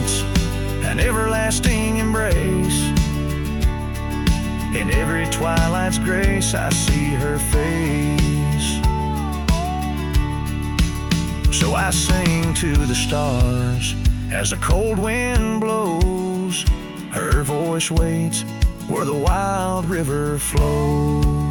an everlasting embrace. In every twilight's grace I see her face. So I sing to the stars as the cold wind blows. Her voice waits where the wild river flows.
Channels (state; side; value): identical; both; correlation 1.00